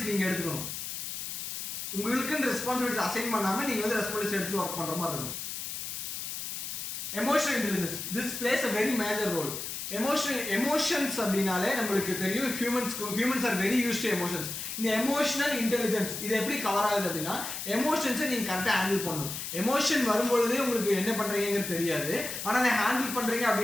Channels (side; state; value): left; noise; hiss, 6 dB below the sound